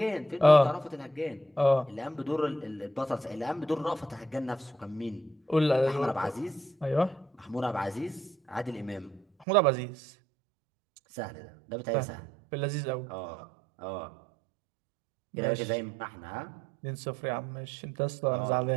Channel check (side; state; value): left; drops out; at 9.5 s